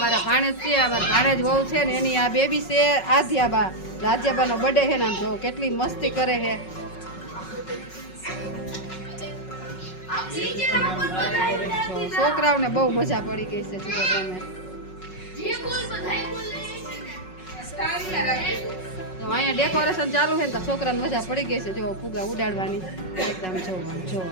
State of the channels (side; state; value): right; late; 5.4 ms